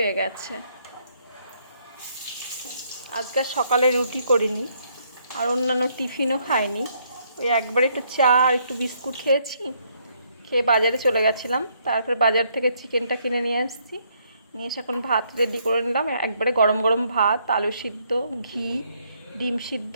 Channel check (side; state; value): both; inverted; correlation -0.71